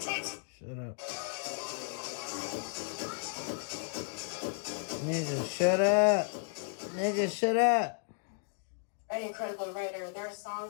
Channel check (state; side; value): silent; right; digital silence